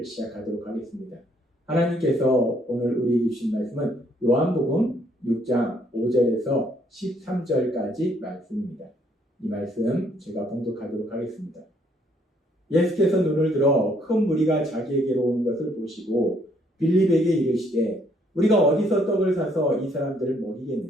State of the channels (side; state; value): both; normal; correlation 0.67